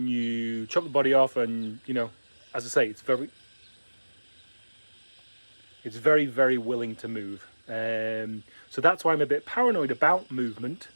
you chop the body off and, as I say, it's very, very willing to move. So that's why I'm a bit paranoid about movement.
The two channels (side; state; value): both; inverted; correlation -1.00